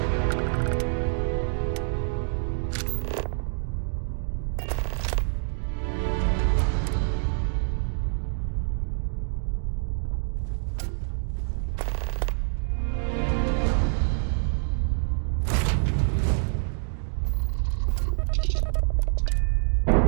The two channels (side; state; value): left; silent; 61 dB below the other